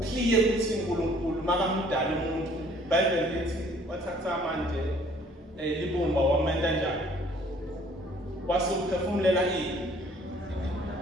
ukuthi uNkulunkulu makamdala umuntu Bible lithi wathatha manje libumba wamenda njani wasuphefumulela ini.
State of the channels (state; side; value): normal; both; correlation 0.58